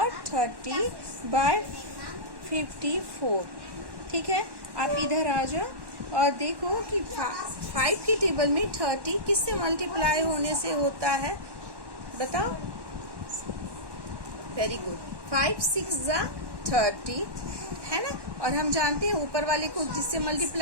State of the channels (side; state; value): left; late; 1.1 ms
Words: 30/54। ठीक है, आप इधर आ जाओ और देखो कि 5 के टेबल में 30 किससे मल्टीप्लाई होने से होता है, बताओ। वेरी गुड, 5 6 30, है ना। और हम जानते हैं ऊपर वाले को जिससे